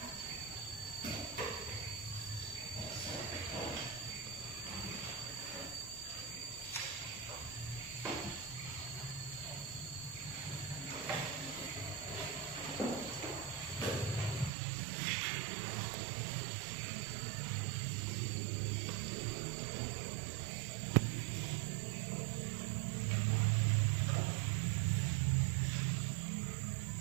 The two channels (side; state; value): left; drops out; at 14.5 s